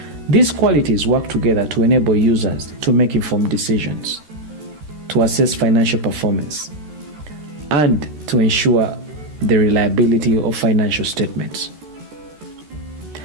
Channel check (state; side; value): late; left; 13 ms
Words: These qualities work together to enable users to make informed decisions, to assess financial performance, and to ensure the reliability of financial statements.